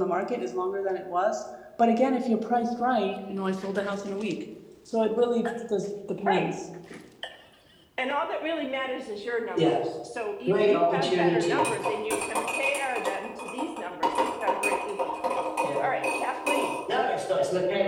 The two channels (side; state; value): both; identical; correlation 1.00